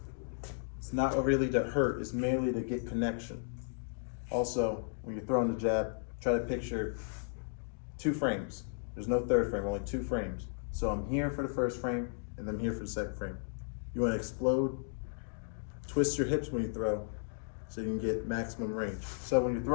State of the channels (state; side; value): silent; right; digital silence